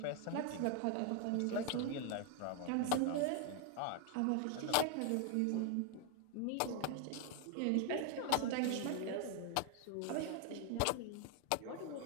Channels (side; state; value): both; different; correlation 0.01